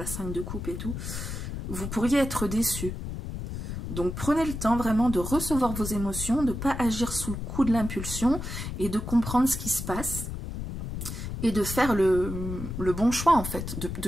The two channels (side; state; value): left; noise; rumble, 6 dB below the sound